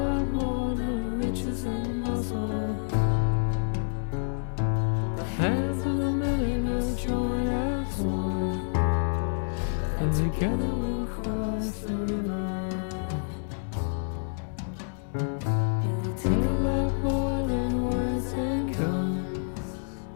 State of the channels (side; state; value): right; silent; digital silence